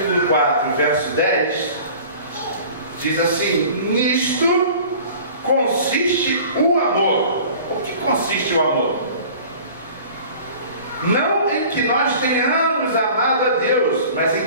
4, verso 10, diz assim: nisto consiste o amor. O que consiste o amor? Não em que nós tenhamos amado a Deus, mas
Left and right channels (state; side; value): inverted; both; correlation -0.44